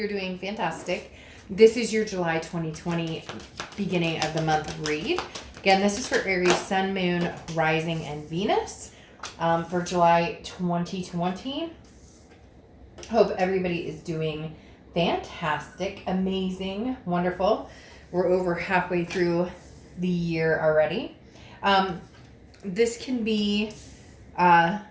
doing fantastic. This is your July 2020 beginning of the month read. Again, this is for Aries, Sun, Moon, Rising, and Venus for July 2020. Hope everybody is doing fantastic, amazing, wonderful. We're over halfway through the year already. This can be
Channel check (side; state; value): both; identical; correlation 1.00